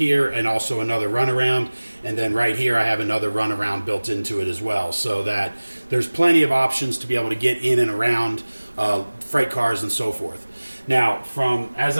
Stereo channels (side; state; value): both; inverted; correlation -1.00